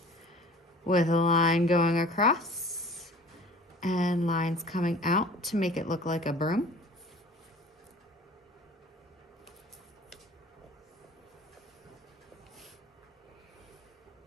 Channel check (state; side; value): normal; both; correlation 0.45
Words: with a line going across and lines coming out to make it look like a broom.